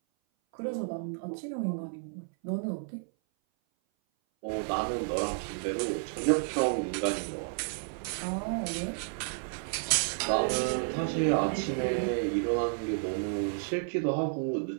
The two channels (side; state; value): left; silent; 57 dB below the other